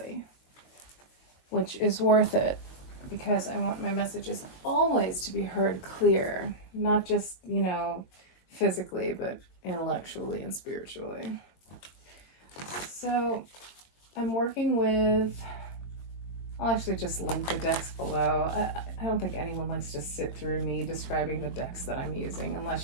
which is worth it because I want my messages always to be heard clear, not just, physically, but intellectually and spiritually. So I'm working with I'll actually just link the decks below. I don't think anyone likes to sit through me describing the decks that I'm using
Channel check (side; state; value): right; late; 22 ms